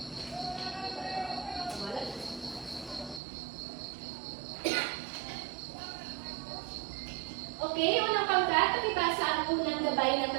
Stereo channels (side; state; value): left; drops out; at 3.2 s